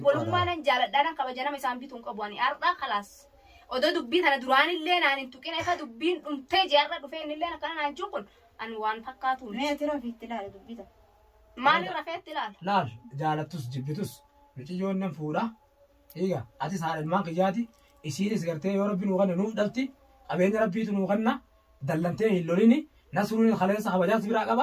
بولو ما نان جالد دان خبجنا مسام بيتون قبواني اردا خلاص odo dubbiin tana duraan illee naan hin tuqin efa dubbiin dhumtee jaarra dhufeen illee akkana naan juqun an waan fakkaatu ما ترى في تلال دبيتا maali rafeetti ilaala laal jaalattus jibbitus miciyyoon nan fuudha eega ati saadhalmaan kiyyaati isiinis gartee yoo rabbi nuu kanne nuuf dhalti qabeenya rabbiitu nuu kanna dallantee hin lolini nasruun khaleessa kabajaas biraa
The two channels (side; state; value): both; identical; correlation 1.00